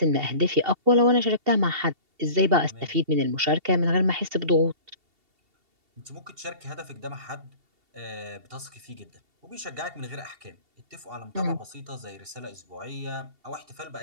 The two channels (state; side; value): late; left; 2.7 ms